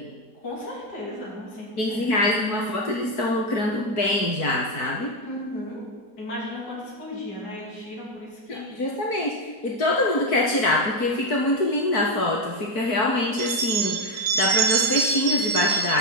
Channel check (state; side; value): late; right; 4.6 ms